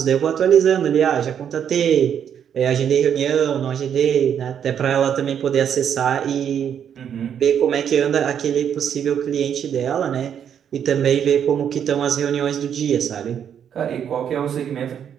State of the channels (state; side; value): quieter; left; 8.6 dB